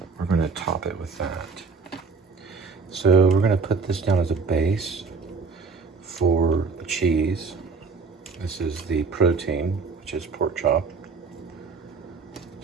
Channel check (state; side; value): quieter; left; 4.7 dB